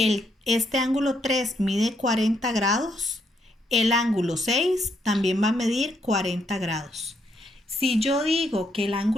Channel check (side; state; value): both; normal; correlation 0.75